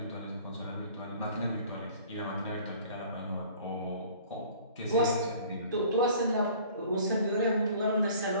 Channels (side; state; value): both; inverted; correlation -0.50